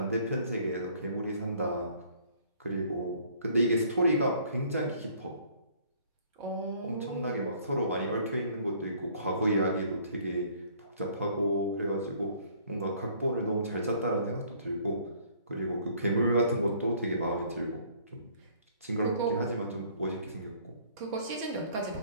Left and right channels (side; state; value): both; inverted; correlation -0.59